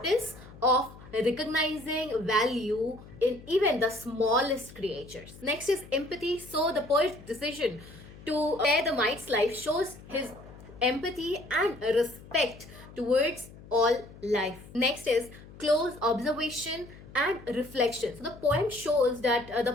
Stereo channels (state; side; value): noise; left; hum, 19 dB below the sound